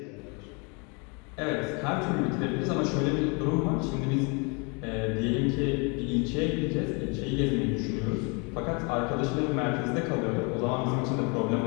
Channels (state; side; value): quieter; right; 32.3 dB